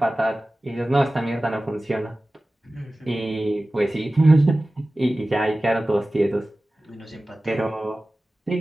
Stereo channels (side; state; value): both; normal; correlation 0.97